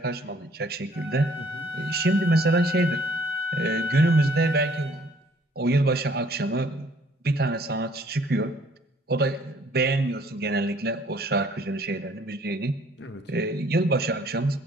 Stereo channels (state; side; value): normal; both; correlation 0.60